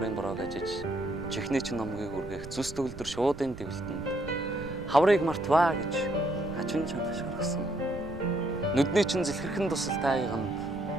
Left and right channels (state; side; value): noise; right; rumble, 14 dB below the sound